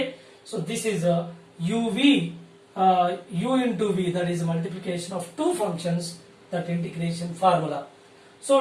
so this is a uv, u into v, that is multiplication of two functions, that integration formula.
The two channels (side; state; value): both; identical; correlation 1.00